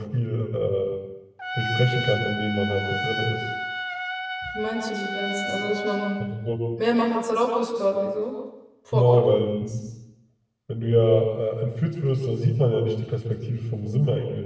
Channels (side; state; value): both; identical; correlation 1.00